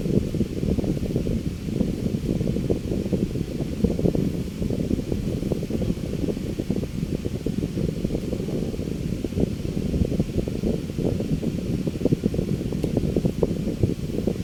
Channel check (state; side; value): identical; both; correlation 1.00